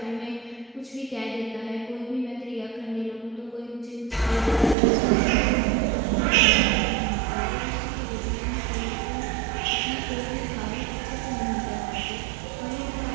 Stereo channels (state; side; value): drops out; left; at 4.8 s